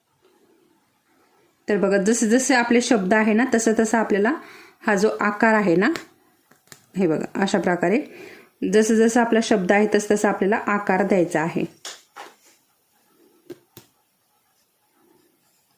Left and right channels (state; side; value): identical; both; correlation 1.00